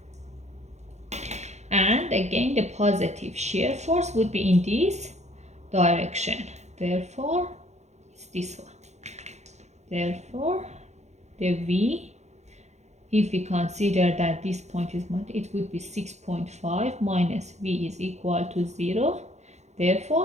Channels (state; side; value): late; left; 0.33 ms